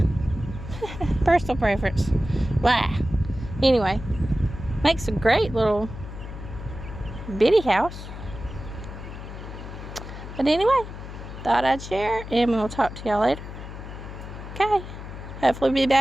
Personal preference. Blah. Anyway, makes a great little bitty house. But anyway, thought I'd share, and we'll talk to y'all later. Okay. Hopefully we'll be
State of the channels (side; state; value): left; noise; hum, 11 dB below the sound